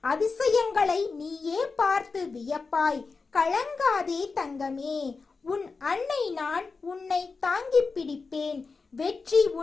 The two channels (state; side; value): quieter; right; 4.4 dB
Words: அதிசயங்களை நீயே பார்த்து வியப்பாய். கலங்காதே தங்கமே. உன் அன்னை நான் உன்னை தாங்கி பிடிப்பேன். வெற்றி